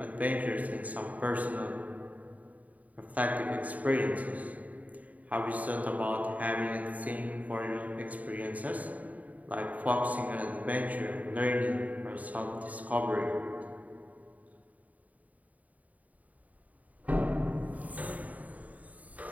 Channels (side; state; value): left; late; 0.072 ms